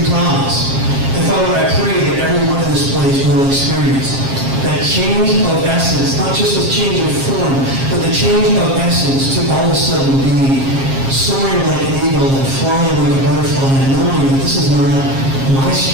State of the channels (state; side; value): late; left; 7.4 ms